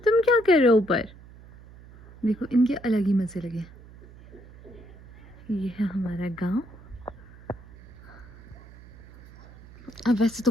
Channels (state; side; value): noise; right; hum, 20 dB below the sound